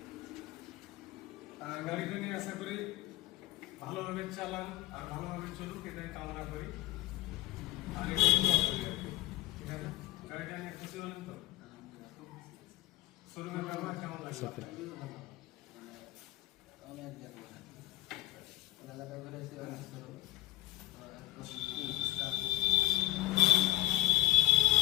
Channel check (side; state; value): right; quieter; 16.8 dB